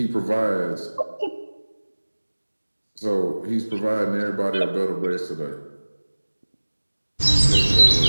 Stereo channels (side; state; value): both; inverted; correlation -1.00